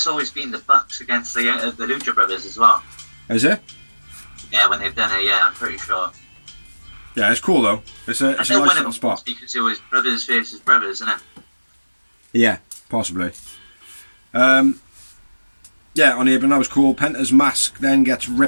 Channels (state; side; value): inverted; both; correlation -1.00